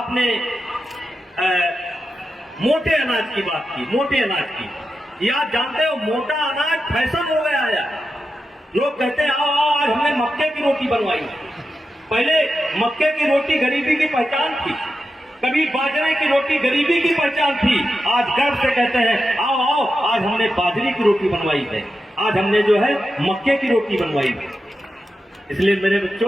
मोटे अनाज की बात की, मोटे अनाज की, या जानते हो मोटा अनाज फैशन हो गया है। लोग कहते हैं आओ आओ आज हमने मक्के की रोटी बनवाई। पहले मक्के की रोटी गरीबी की पहचान थी, कभी बाजरे की रोटी गरीबी की पहचान थी। आज गर्व से कहते हैं आओ आओ आज हमने बाजरे की रोटी बनवाई है, आज हमने जो है मक्के की रोटी बनवाई है। इसलिए मेरे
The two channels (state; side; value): normal; both; correlation 0.90